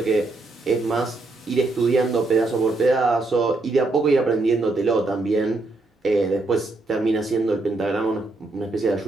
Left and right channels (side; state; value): left; quieter; 3.1 dB